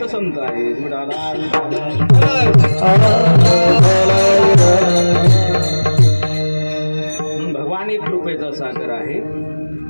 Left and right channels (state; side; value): inverted; both; correlation -1.00